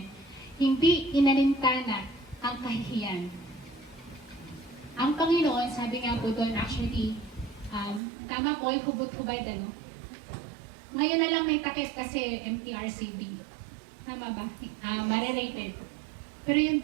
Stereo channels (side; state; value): left; drops out; at 8.0 s